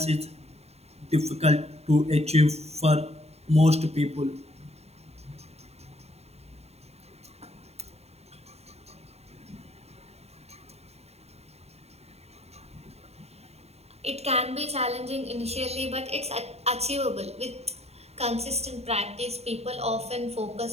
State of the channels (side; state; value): left; late; 0.30 ms